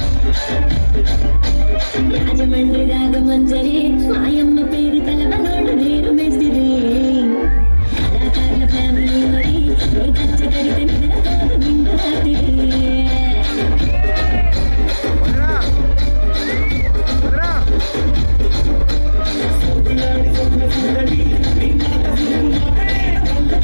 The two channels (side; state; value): both; inverted; correlation -1.00